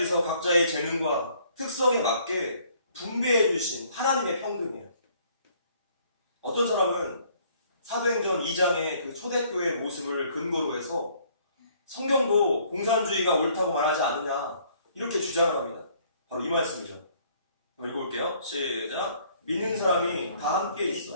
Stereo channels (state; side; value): inverted; both; correlation -0.62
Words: 각자의 재능과 특성에 맞게 분배해 주신 하나님의 평등이에요. 어떤 사람은 사도행전 2장의 그 초대교회의 모습을 근거로 해서 성경도 공산주의가 옳다고 말하지 않느냐 이렇게 주장을 합니다. 바로 이 말씀이죠. 읽어볼게요. 시작. 믿는 사람이 다 함께 있어